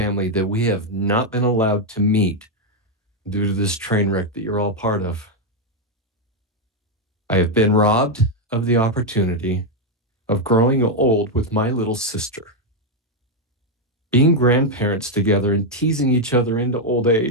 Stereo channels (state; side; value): normal; both; correlation 0.02